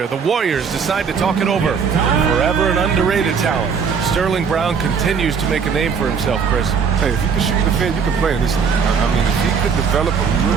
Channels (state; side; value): quieter; left; 6.2 dB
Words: The Warriors decide to talk it over. Forever an underrated talent. Sterling Brown continues to make a name for himself, Chris. Hey, if you can shoot the defend, you can play in this. I mean, if he could develop a